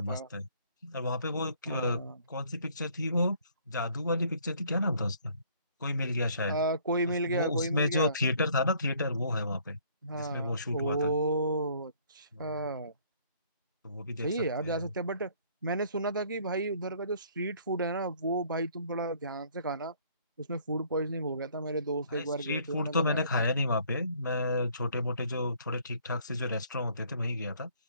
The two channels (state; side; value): inverted; both; correlation -0.60